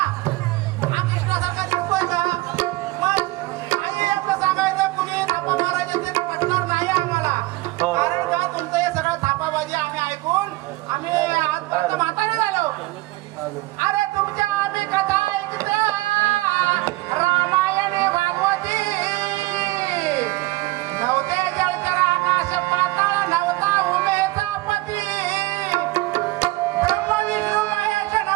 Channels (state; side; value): quieter; left; 20.6 dB